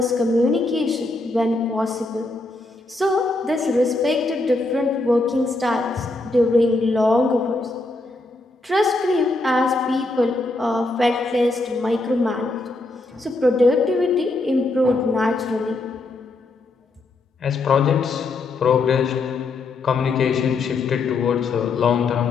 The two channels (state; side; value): quieter; right; 3.2 dB